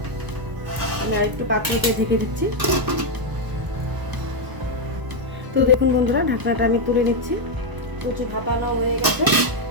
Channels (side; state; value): left; late; 1.0 ms